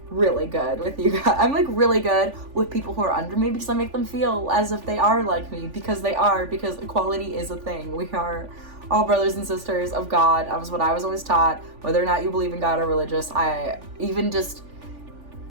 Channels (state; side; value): late; left; 3.5 ms